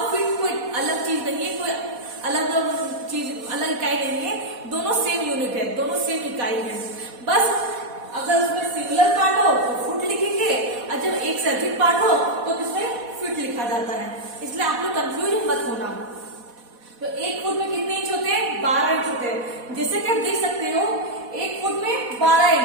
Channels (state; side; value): late; left; 4.1 ms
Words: फीट कोई अलग चीज नहीं है, कोई अलग चीज, अलग इकाई नहीं है। दोनों सेम यूनिट है, दोनों सेम इकाई है। बस अगर उसमें सिंगुलर पार्ट हो तो फुट लिखेंगे और जब एक से अधिक पार्ट हो तो किसमें फीट लिखा जाता है। इसलिए आप लोग कंफ्यूज मत होना। तो एक फुट में कितने इंच होते हैं? 12 इंच होते हैं। जैसे कि आप देख सकते हो एक फुट में 12